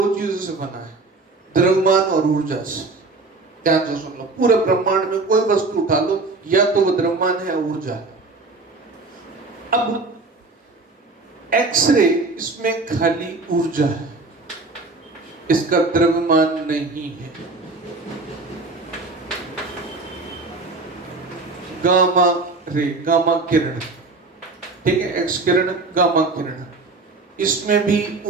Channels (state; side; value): quieter; left; 3.6 dB